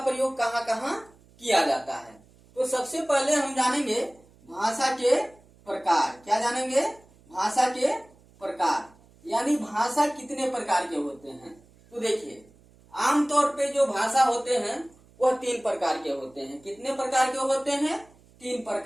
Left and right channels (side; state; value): right; noise; hum, 28 dB below the sound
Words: प्रयोग कहाँ कहाँ किया जाता है। तो सबसे पहले हम जानेंगे भाषा के प्रकार। क्या जानेंगे? भाषा के प्रकार, यानी भाषा कितने प्रकार के होते हैं। तो देखिए, आमतौर पे जो भाषा होते हैं वह 3 प्रकार के होते हैं। कितने प्रकार के होते हैं? 3